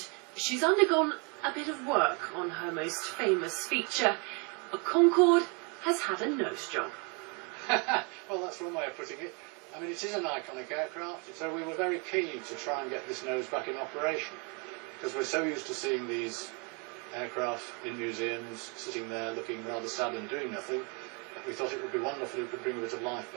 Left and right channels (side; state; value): left; quieter; 33.7 dB